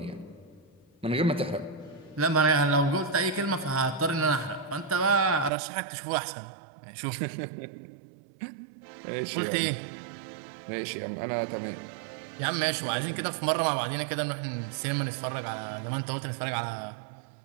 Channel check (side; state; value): left; drops out; at 5.5 s